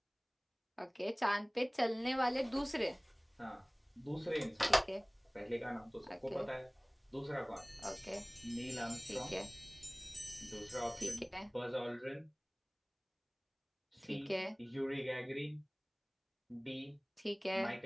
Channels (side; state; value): both; identical; correlation 1.00